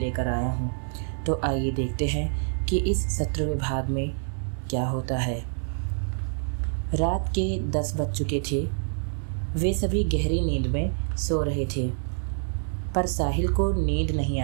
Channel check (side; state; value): left; silent; 60 dB below the other